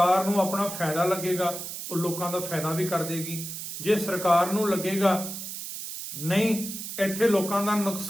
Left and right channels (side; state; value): right; noise; hiss, 8 dB below the sound